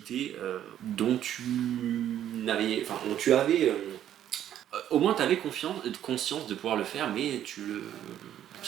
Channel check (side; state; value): left; quieter; 11.0 dB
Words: dont tu avais au moins tu avais conscience de pouvoir le faire, mais tout